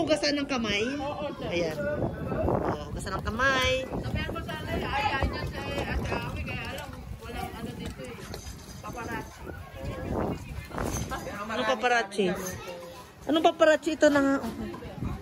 hugasan ng kamay? Ayan. Oh, hugasan ng kamay. Sabihan ko sana ayaw niya sa Ate Ami, kaya alam, walang ano dito eh. Paparazzi. Anong paparazzi? Anong paparazzi ito na nga?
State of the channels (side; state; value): both; identical; correlation 1.00